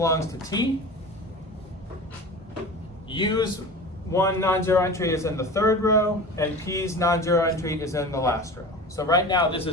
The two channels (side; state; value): both; normal; correlation 0.34